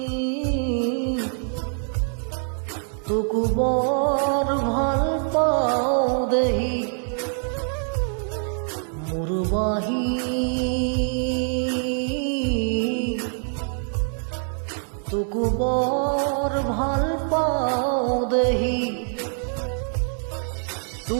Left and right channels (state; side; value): silent; left; 59 dB below the other